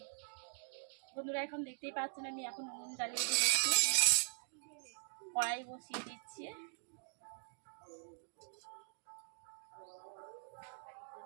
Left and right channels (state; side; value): silent; left; digital silence